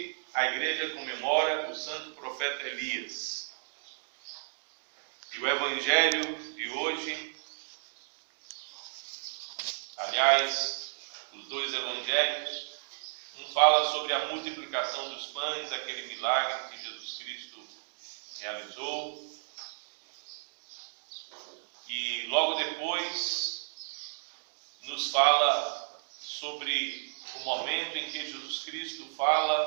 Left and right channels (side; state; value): left; silent; digital silence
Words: a igreja comemora o santo profeta Elias. E o evangelho de hoje, aliás, os dois evangelhos, um fala sobre a multiplicação dos pães, aquele milagre que Jesus Cristo realizou. E logo depois nos fala sobre o momento em que Jesus Cristo